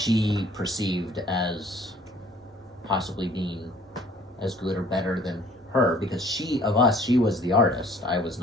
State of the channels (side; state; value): both; normal; correlation 0.55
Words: perceived as possibly being as good or better than her, because she was the artist, I was